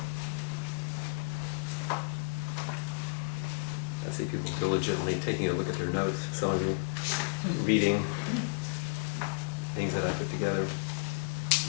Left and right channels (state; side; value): silent; right; digital silence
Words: I see people diligently taking a look at their notes, some of you reading things that I put together.